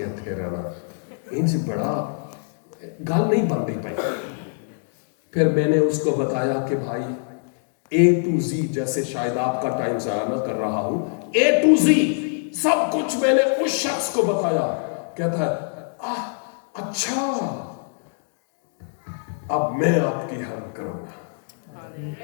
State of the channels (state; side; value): silent; right; digital silence